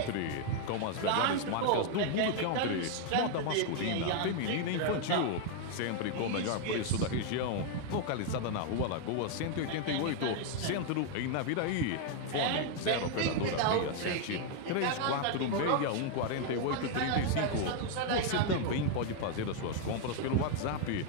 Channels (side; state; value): both; different; correlation 0.00